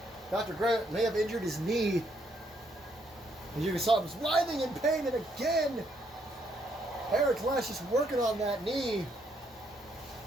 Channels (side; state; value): both; normal; correlation 0.73